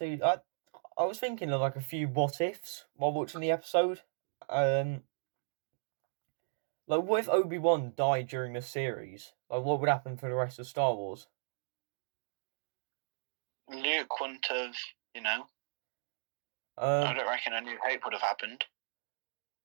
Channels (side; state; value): left; silent; digital silence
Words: I was thinking of like a few what ifs while watching the episode. Like what if Obi-Wan died during the series? Like what would happen for the rest of Star Wars? Luke wouldn't have, I don't reckon A New Hope would have happened.